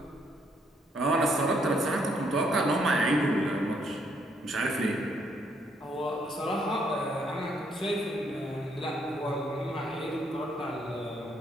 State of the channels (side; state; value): both; normal; correlation 0.71